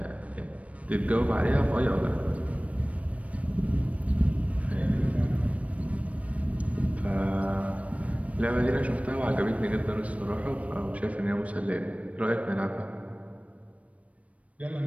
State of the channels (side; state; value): left; late; 0.065 ms